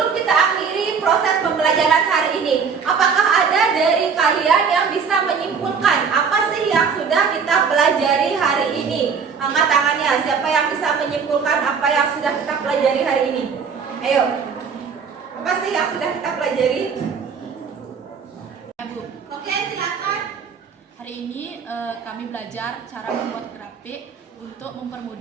kita akhiri proses pembelajaran hari ini, apakah ada dari kalian yang bisa menyimpulkan apa sih yang sudah kita pelajari hari ini? Angkat tangannya, siapa yang bisa menyimpulkan apa yang sudah kita pelajari hari ini? Ayo, apa sih yang sudah kita pelajari? Ya, Bu. Oke, silakan. Hari ini kami belajar cara membuat grafik untuk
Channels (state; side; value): quieter; left; 6.0 dB